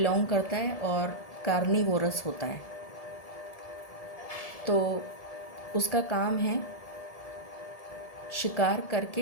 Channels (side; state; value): right; late; 1.7 ms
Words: करता है और कार्निवोरस होता है। तो उसका काम है शिकार